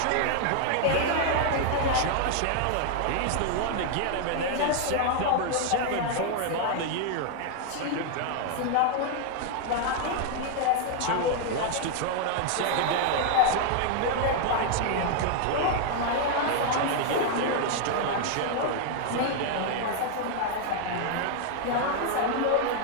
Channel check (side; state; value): both; different; correlation 0.00